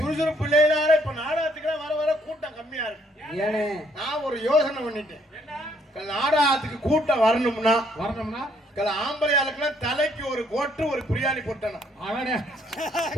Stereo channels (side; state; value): both; normal; correlation 0.67